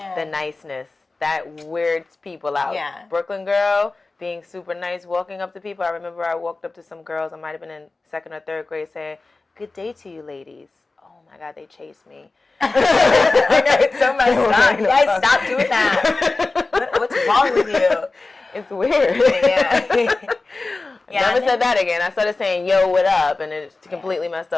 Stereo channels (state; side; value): quieter; right; 3.5 dB